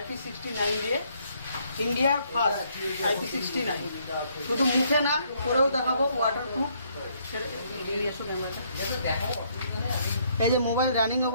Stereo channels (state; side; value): inverted; both; correlation -0.69